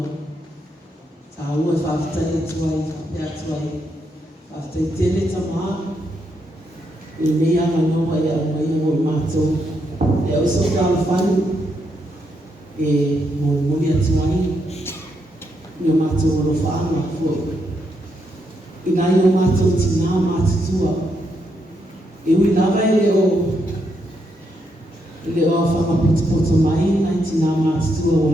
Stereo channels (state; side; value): normal; both; correlation 0.79